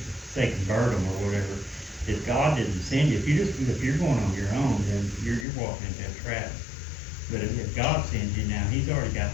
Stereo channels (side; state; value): right; drops out; at 5.5 s